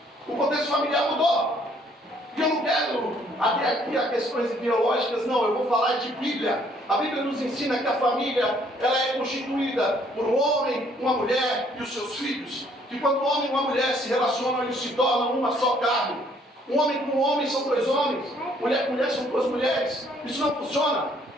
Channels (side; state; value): both; normal; correlation 0.64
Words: O contexto familiar mudou. E eu não quero até aqui a questões ideológicas, não, eu vou falar de Bíblia. A Bíblia nos ensina que a família ela é constituída por um homem, uma mulher e os seus filhos. Que quando um homem e uma mulher se relacionam, eles se tornam uma só carne. Um homem com um homem são 2 homens, mulher com mulher são 2 mulheres. Isso não funciona.